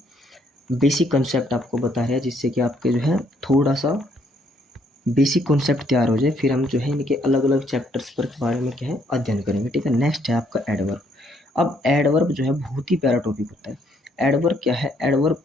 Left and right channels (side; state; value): both; normal; correlation 0.69